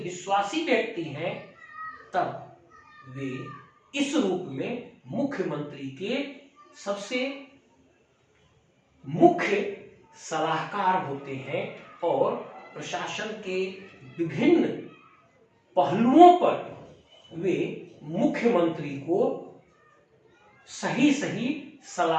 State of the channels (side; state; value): both; identical; correlation 1.00